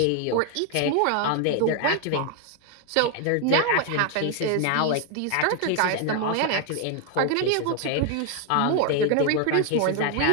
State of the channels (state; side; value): different; both; correlation 0.00